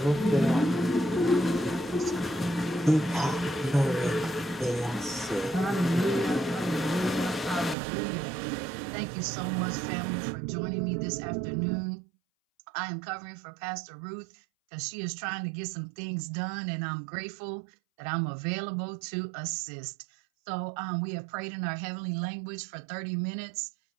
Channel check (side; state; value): left; drops out; at 7.8 s